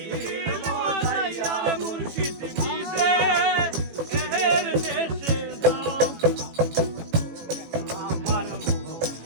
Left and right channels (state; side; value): late; left; 18 ms